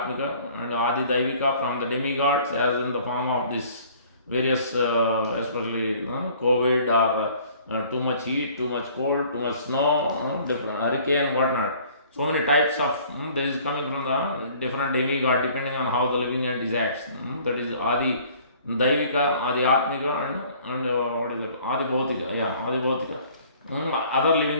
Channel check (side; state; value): both; inverted; correlation -0.54